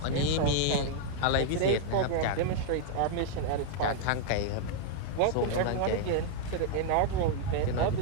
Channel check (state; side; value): different; both; correlation -0.01